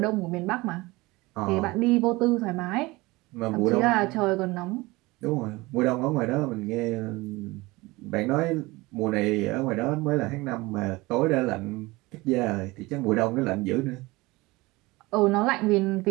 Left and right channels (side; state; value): left; quieter; 21.9 dB